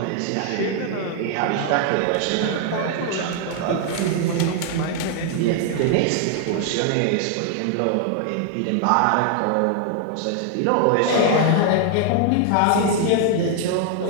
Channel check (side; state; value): both; different; correlation 0.00